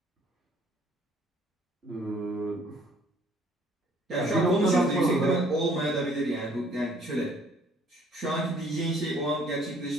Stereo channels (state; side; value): normal; both; correlation 0.59